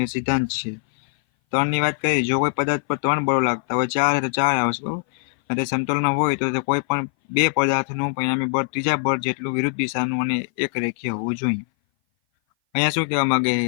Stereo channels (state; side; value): silent; right; 58 dB below the other